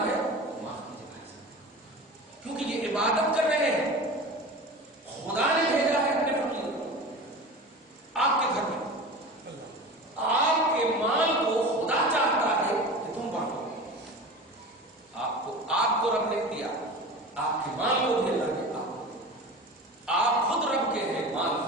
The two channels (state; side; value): normal; both; correlation 0.33